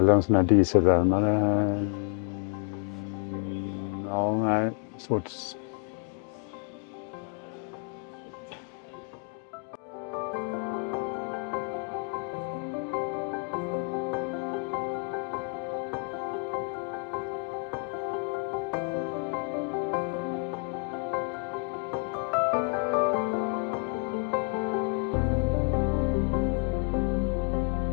en sån här dieselvärmare. Ja, nej, svårt.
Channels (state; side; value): quieter; right; 37.2 dB